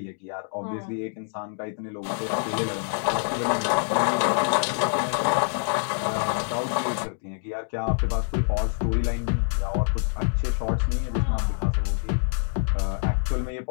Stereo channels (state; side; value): silent; right; 61 dB below the other